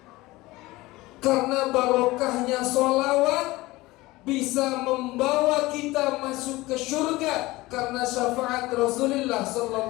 Karena barokahnya sholawat bisa membawa kita masuk ke surga karena syafaat Rasulullah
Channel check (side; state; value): right; quieter; 19.8 dB